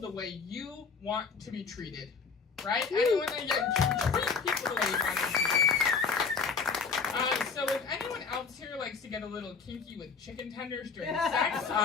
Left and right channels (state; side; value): quieter; right; 5.3 dB